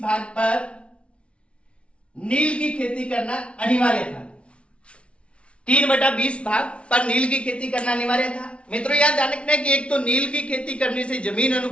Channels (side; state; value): right; late; 0.060 ms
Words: भाग पर नील की खेती करना अनिवार्य था। 3/20 भाग पर नील की खेती करना अनिवार्य था। मित्रों, याद ध्यान रखना है कि एक तो नील की खेती करने से जमीन